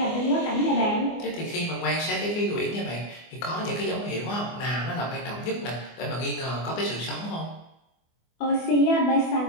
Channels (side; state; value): right; late; 24 ms